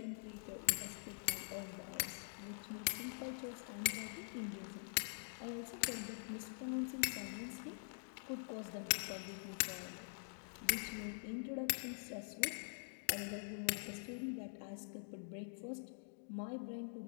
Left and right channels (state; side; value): silent; right; digital silence